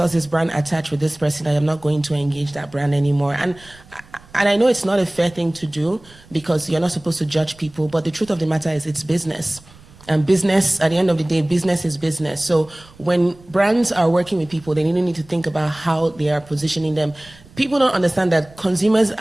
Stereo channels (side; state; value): right; noise; rumble, 25 dB below the sound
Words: this brand attached with this person, I am not going to engage that brand anymore. And I know it's not a fair thing to do, because you're not supposed to judge people, but the truth of the matter is it's business. And business, at the end of the day, business is business. So when brands are working with people, they need to think about how they are positioning them. People don't understand that consumers,